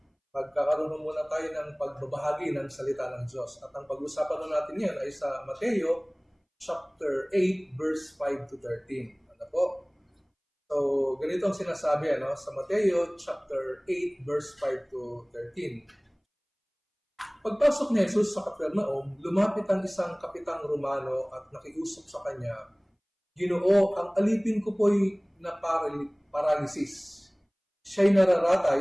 magkakaroon muna tayo ng pagbabahagi ng salita ng Diyos. At ang pag-usapan natin ngayon ay sa Mateo chapter 8, verse 5 to 13. Ano po? So, ganito ang sinasabi sa Mateo chapter 8 verse 5 to 13. Pagpasok ni Jesus sa Capernaum, lumapit ang isang kapitang Romano at nakiusap sa kanya, "Ginoo, ang alipin ko po'y na paralysis. Siya'y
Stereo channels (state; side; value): identical; both; correlation 1.00